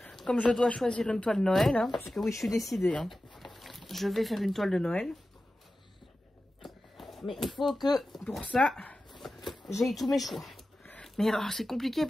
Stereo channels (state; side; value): normal; both; correlation 0.94